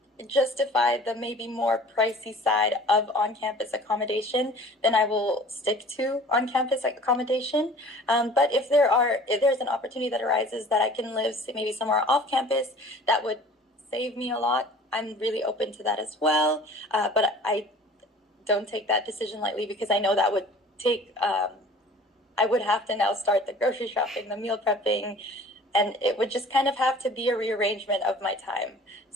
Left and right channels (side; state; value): both; normal; correlation 0.46